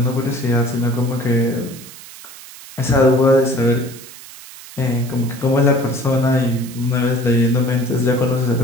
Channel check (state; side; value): noise; right; hiss, 17 dB below the sound